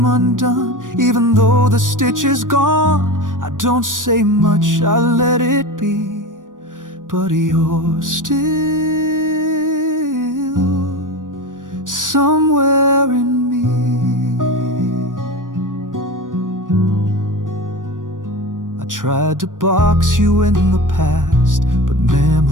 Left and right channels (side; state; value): left; late; 0.88 ms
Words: undone. Even though the stitch is gone, I don't say much, I let it be. But you're still somewhere in me. I tried to box you in the past, but